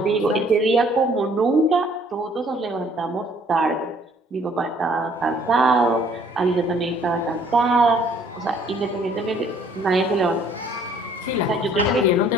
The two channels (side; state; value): both; normal; correlation 0.60